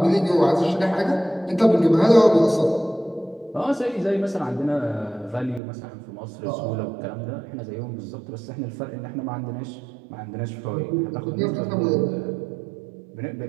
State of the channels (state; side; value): drops out; left; at 5.6 s